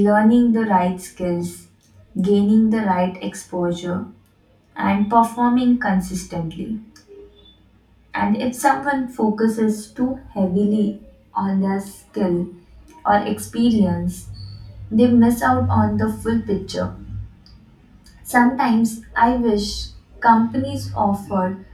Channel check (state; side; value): identical; both; correlation 1.00